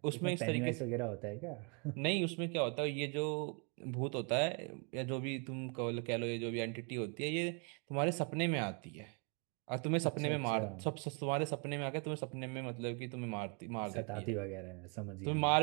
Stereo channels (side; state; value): left; quieter; 36.6 dB